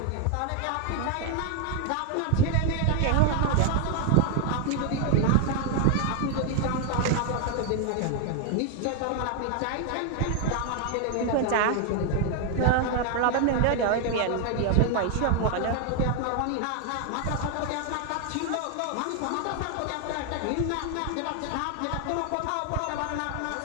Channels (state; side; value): different; both; correlation 0.00